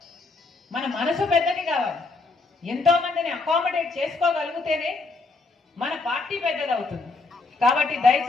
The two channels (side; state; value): right; quieter; 3.7 dB